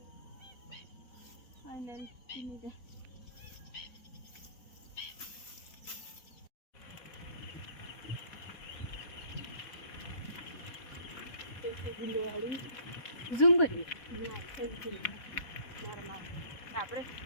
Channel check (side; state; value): right; late; 4.1 ms